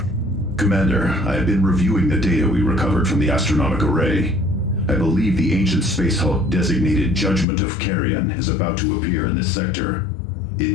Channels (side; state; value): right; drops out; at 7.5 s